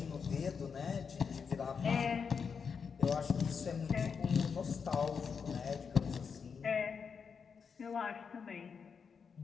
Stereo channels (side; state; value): right; quieter; 6.1 dB